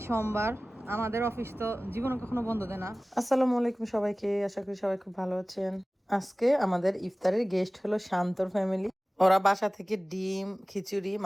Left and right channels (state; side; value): normal; both; correlation 0.98